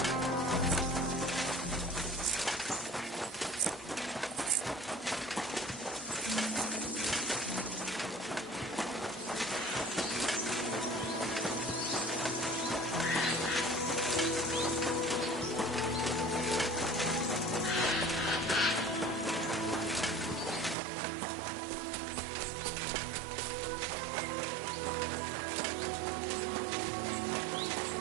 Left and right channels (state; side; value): drops out; left; at 20.8 s